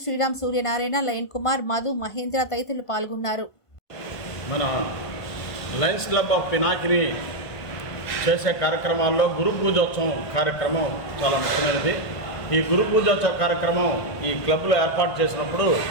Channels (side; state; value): right; late; 1.5 ms